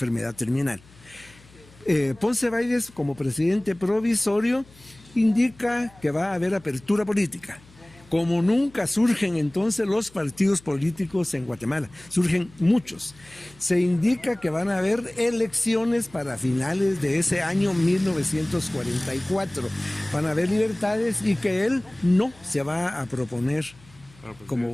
terminal. Ponce Baides, como presidente provisorio, indica que va a haber apertura política. Como nunca surgen entonces los partidos políticos en Guatemala, surgen muchos. Se indica que van a haber elecciones para finales de ese año 1944. Van a haber libertades y que él no se va a proponer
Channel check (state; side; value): noise; left; hum, 26 dB below the sound